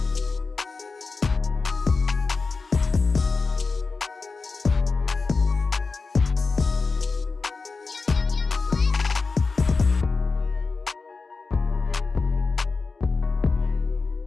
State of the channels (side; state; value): right; quieter; 4.2 dB